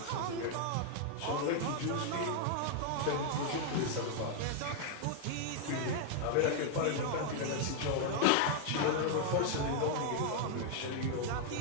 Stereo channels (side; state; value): both; different; correlation 0.00